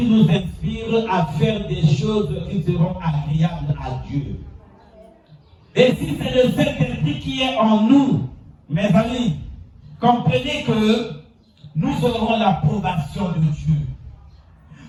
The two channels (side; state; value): both; identical; correlation 1.00